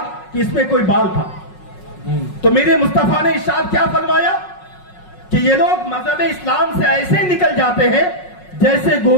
कि इसमें कोई बाल था। तो मेरे मुस्तफा ने इरशाद क्या फरमाया कि ये लोग मजहब इस्लाम से ऐसे निकल जाते हैं जैसे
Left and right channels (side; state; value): right; late; 5.5 ms